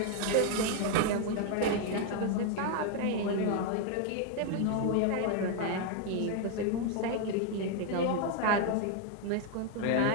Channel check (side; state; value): both; different; correlation 0.01